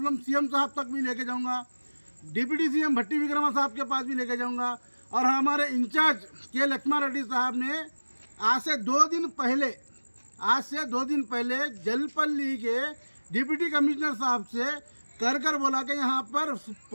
सीएम साहब तक भी लेके जाऊँगा, डिप्टी सीएम भट्टी विक्रमा साहब के पास भी लेके जाऊँगा। और हमारे इंचार्ज के लक्ष्मण रेड्डी साहब ने आज से 2 दिन पहले जलपल्ली के डिप्टी कमिश्नर साहब से कर बोला कि यहाँ पर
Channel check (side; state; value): both; inverted; correlation -1.00